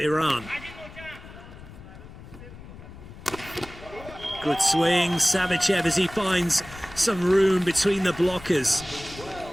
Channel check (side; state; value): left; noise; rumble, 17 dB below the sound